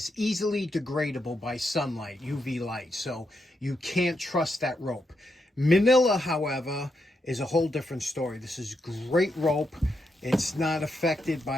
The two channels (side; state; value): both; normal; correlation 0.82